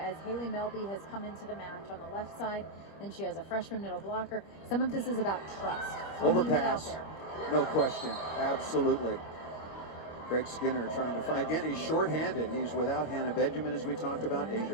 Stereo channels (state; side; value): late; right; 25 ms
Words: Haley Melby has come into the match on the left side, and she has a freshman middle blocker, some of this is about trust. Overpass, no question, absolutely. Greg Skinner trying to find, again, he's shorthanded. He's without Hannah Benjamin, as we talked about.